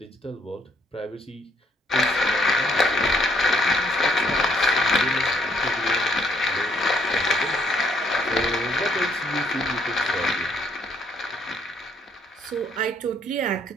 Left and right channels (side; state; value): both; normal; correlation 0.68